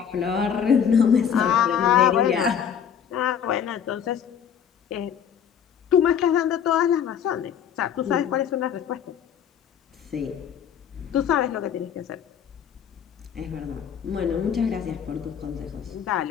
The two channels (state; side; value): quieter; right; 8.2 dB